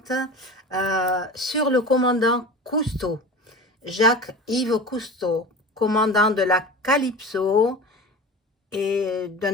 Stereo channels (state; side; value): normal; both; correlation 0.33